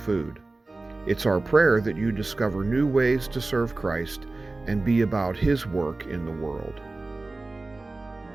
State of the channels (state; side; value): quieter; left; 3.2 dB